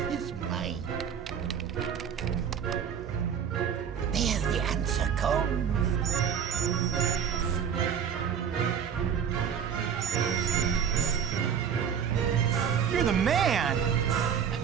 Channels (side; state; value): left; quieter; 7.8 dB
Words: his mind. There the answer comes. You're the man! I've